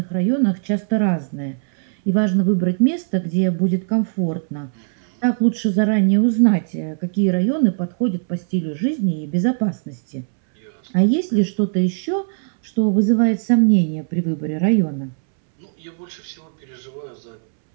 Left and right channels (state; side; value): silent; left; 66 dB below the other